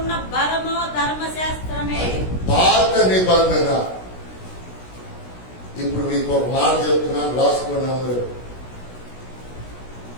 బలము ధర్మశాస్త్రమే. పాత నిబంధన. ఇప్పుడు మీకు ఒక మాట చెప్తున్నాను, రాసుకున్నాము.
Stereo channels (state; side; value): late; right; 16 ms